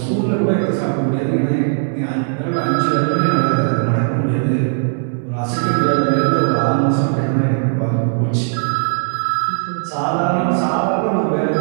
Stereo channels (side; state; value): left; silent; digital silence